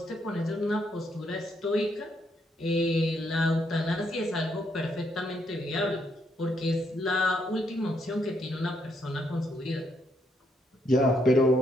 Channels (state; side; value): normal; both; correlation 0.75